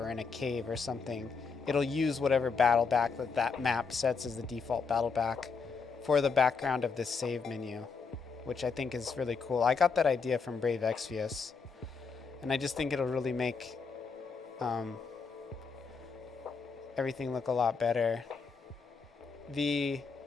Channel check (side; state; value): right; quieter; 5.2 dB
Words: in a cave or something, it'll use whatever battle back that map sets as the default battle back for the background of this save menu, which I think is really cool. I got that idea from Brave Exvius, and I just think it'll really make everything look a lot better.